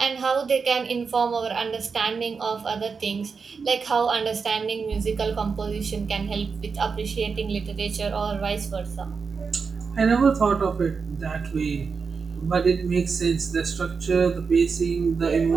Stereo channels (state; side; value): quieter; left; 5.2 dB